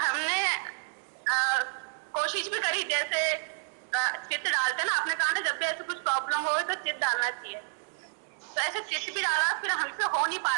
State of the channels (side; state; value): left; silent; digital silence